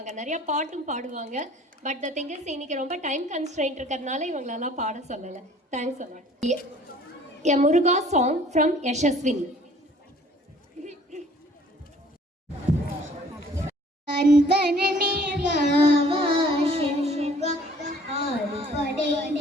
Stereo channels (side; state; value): both; normal; correlation 0.55